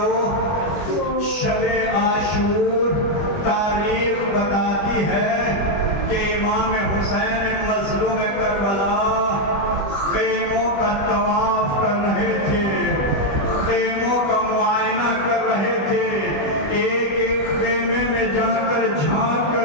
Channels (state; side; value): late; right; 20 ms